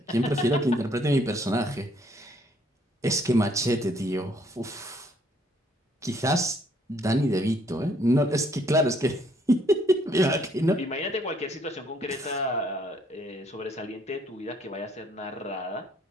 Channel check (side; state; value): both; normal; correlation 0.66